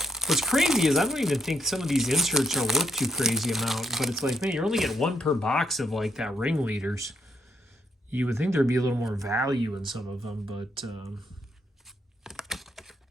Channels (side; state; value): both; normal; correlation 0.75